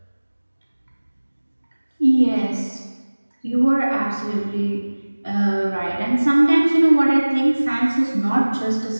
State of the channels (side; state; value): both; inverted; correlation -1.00